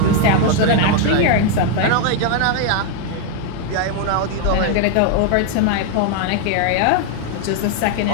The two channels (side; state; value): both; different; correlation 0.00